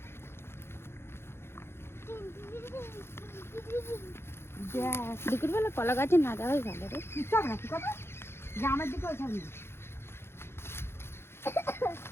দুপুর বেলা কলা গাছে না যাওয়াই ভালো রে। চল না, কি কথা গ্রামের দিকে ওইখানে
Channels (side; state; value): right; late; 0.12 ms